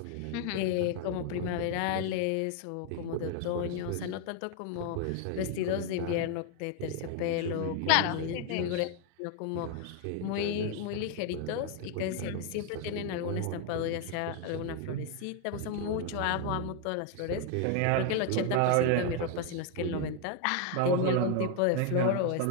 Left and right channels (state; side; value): different; both; correlation 0.01